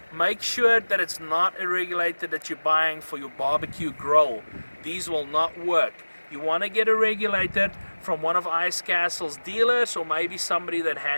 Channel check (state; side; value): inverted; both; correlation -1.00